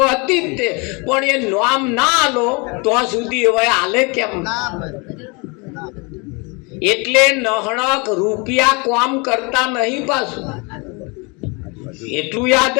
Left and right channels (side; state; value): right; quieter; 29.8 dB